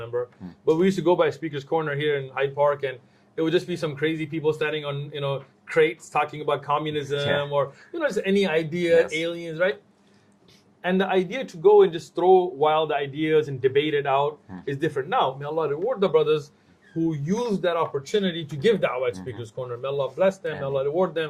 but we used to go by Speaker's Corner here in Hyde Park, and it would just be some crazy people standing on, crates talking about communism or, just any idea, aliens, right? And the idea to go and just throw wild ideas and debate it out is different. Now, may Allah reward the brothers who used that opportunity to give da'wah at Speaker's Corner. May Allah bless them, may Allah reward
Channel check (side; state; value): both; identical; correlation 1.00